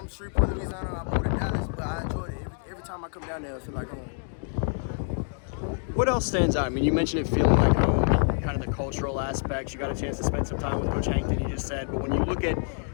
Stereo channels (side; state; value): right; silent; 58 dB below the other